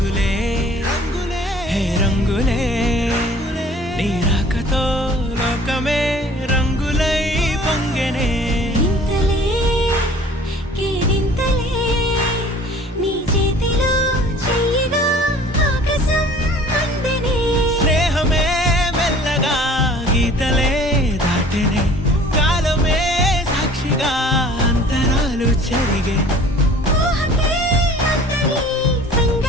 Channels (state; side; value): normal; both; correlation 0.49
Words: హే రంగులే నీ రాకతో లోకమే రంగులై పొంగెనే ఇంతలే కేరింతలే నీ చేతిలో చెయ్యగా ఆకాశం అందనే స్నేహమే మెల్లగా గీతలే దాటెనే కాలమే సాక్షిగా అంతరాలు చెరిగే ఊహకే అంతని